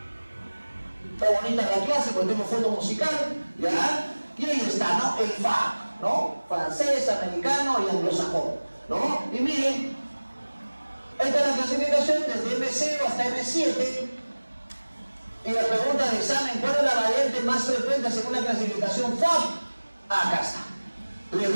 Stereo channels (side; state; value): both; inverted; correlation -1.00